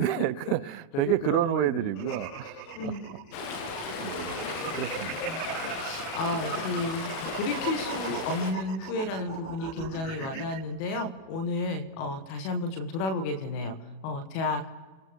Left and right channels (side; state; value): right; late; 37 ms